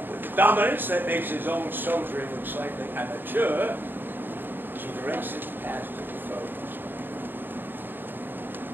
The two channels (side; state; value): left; late; 0.094 ms